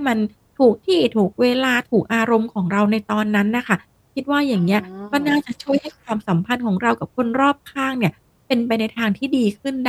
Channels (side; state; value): both; identical; correlation 1.00